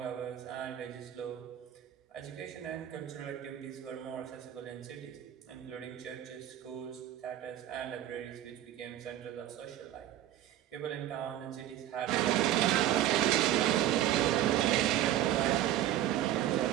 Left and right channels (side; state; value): left; quieter; 12.5 dB